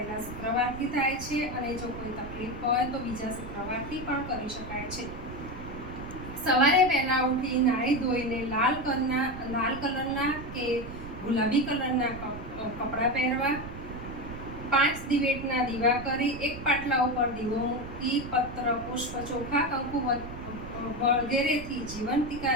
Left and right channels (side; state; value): right; noise; rumble, 11 dB below the sound